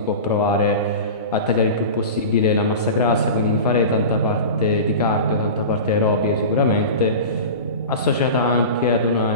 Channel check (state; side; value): inverted; both; correlation -0.31